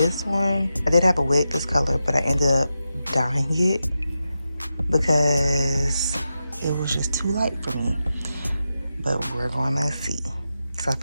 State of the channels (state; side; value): inverted; both; correlation -0.90